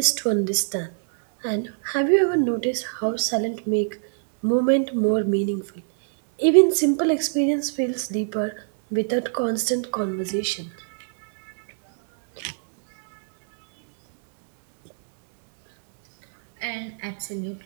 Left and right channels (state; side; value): silent; left; digital silence